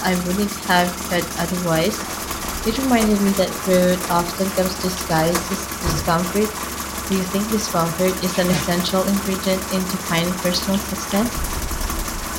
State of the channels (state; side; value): identical; both; correlation 1.00